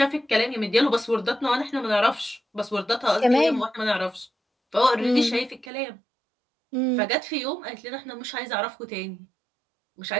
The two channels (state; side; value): drops out; left; at 5.7 s